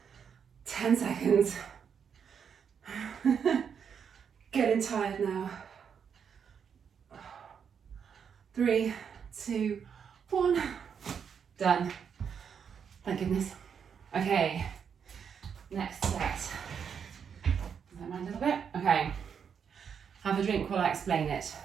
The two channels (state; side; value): quieter; left; 7.2 dB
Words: Ten seconds. Getting tired now. 3, 2, 1. Done. Thank goodness. Okay. Next set. Don't mind a little bit. Okay. Have a drink while I explain it.